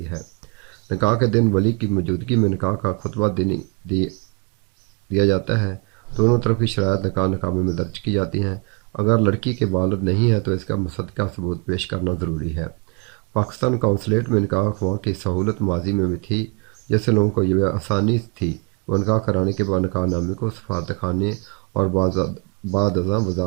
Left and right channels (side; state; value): left; quieter; 30.7 dB